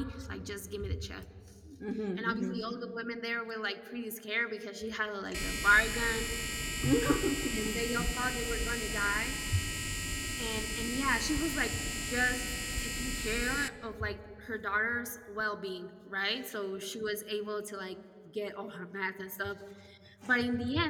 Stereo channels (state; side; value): identical; both; correlation 1.00